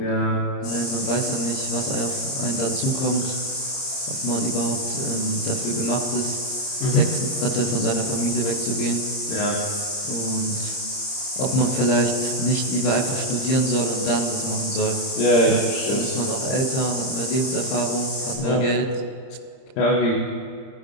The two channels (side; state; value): right; late; 30 ms